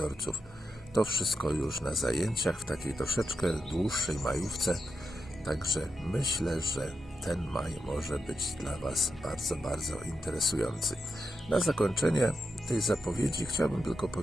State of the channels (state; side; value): normal; both; correlation 0.86